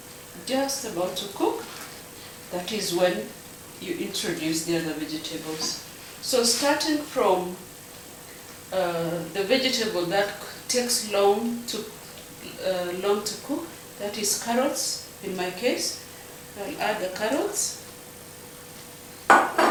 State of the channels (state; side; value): identical; both; correlation 1.00